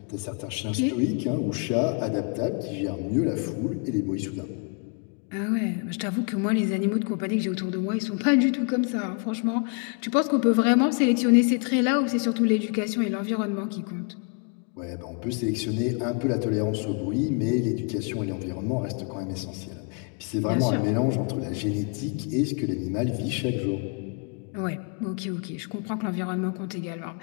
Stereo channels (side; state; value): right; quieter; 37.0 dB